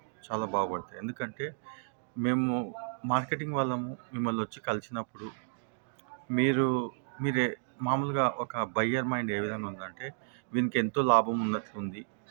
చాలా బాగుపడతాయి. ఎందుకంటే మేము మార్కెటింగ్ వాళ్ళము మిమ్మల్ని వచ్చి కలిసినప్పుడు మీరే మామూలుగా ఒక బయ్యర్ మైండ్ ఏ విధంగా ఉందంటే, వీనికి ఎంతో లాభం ఉన్నట్లుంది,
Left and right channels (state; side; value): silent; left; digital silence